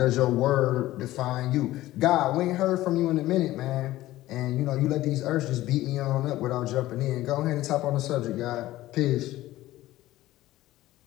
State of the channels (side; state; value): right; quieter; 16.0 dB